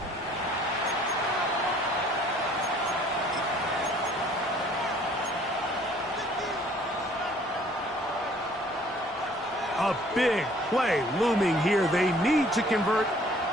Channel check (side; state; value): both; normal; correlation 0.56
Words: A big play looming here. They need to convert.